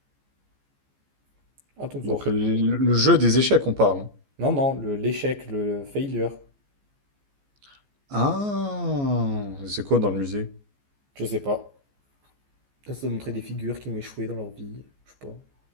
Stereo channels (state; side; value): late; left; 15 ms